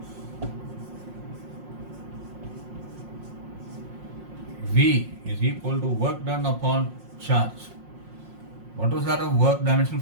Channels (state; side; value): late; left; 5.6 ms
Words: V is equal to work done upon charge. What was that of work dimensional